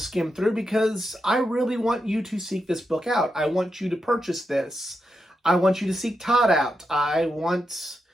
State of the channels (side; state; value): both; normal; correlation 0.86